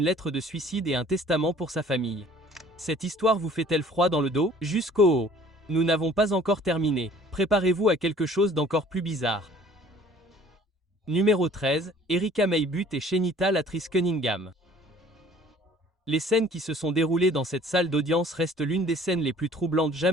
lettre de suicide et un testament pour sa famille. Cette histoire vous fait-elle froid dans le dos? Jusqu'au haut. Nous n'avons pas encore terminé. Préparez-vous à quelque chose d'encore plus bizarre. Numéro 13, Erica May Butt et Shenita Latrice Cunningham. Les scènes qui se sont déroulées dans cette salle d'audience restent l'une des scènes les plus troublantes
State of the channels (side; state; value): both; normal; correlation 0.52